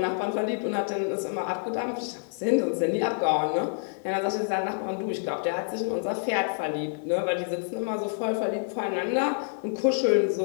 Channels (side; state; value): right; silent; 57 dB below the other